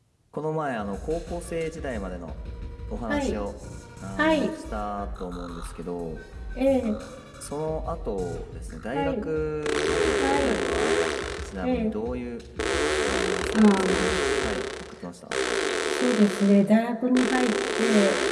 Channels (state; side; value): identical; both; correlation 1.00